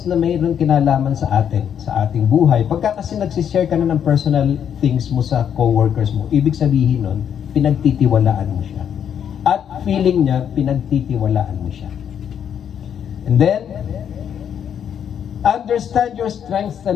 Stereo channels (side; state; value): right; quieter; 8.6 dB